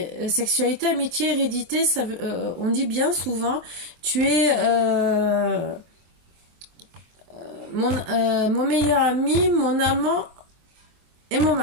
sexualité, amitié, hérédité. Ça, on dit bien souvent, tu es mon meilleur ami, mon amant et mon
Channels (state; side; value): late; left; 23 ms